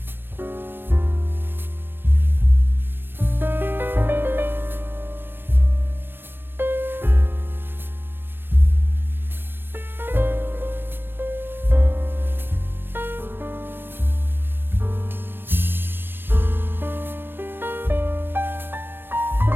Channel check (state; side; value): late; left; 0.098 ms